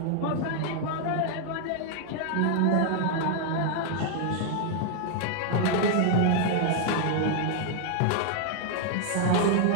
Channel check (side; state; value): both; different; correlation 0.00